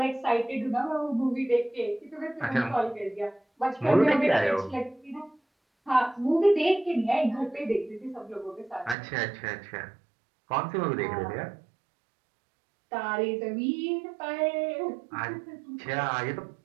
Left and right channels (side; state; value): left; drops out; at 9.0 s